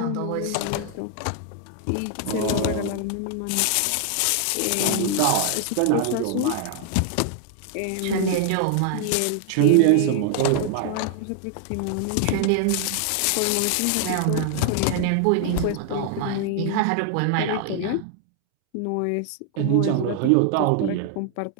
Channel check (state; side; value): different; both; correlation 0.00